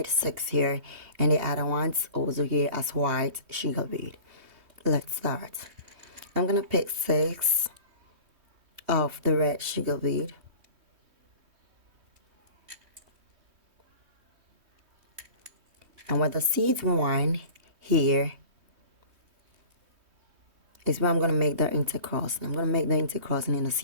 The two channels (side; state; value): left; late; 3.2 ms